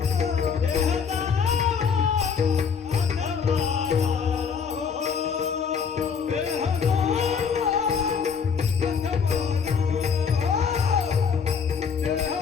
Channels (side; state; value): right; quieter; 6.3 dB